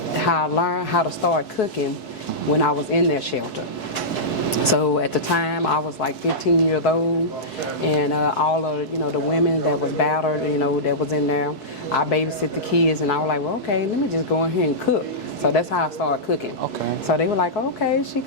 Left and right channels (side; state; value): right; late; 4.6 ms